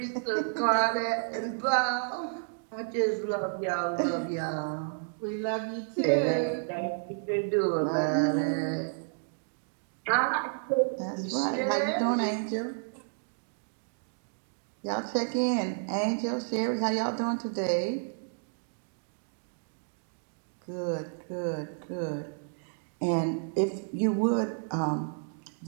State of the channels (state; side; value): silent; left; digital silence